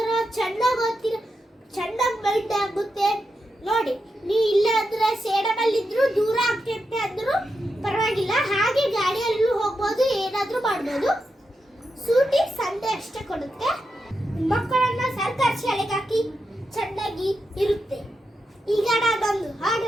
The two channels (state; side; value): normal; both; correlation 0.87